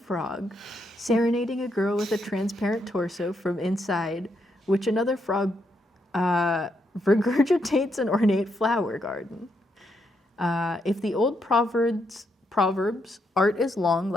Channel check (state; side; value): normal; both; correlation 0.79